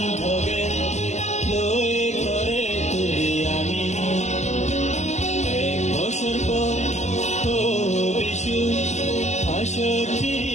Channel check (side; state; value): right; late; 0.33 ms